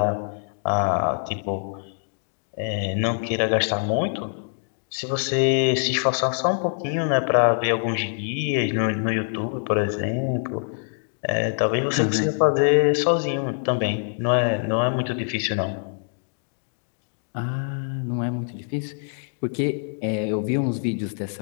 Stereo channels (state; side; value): silent; right; digital silence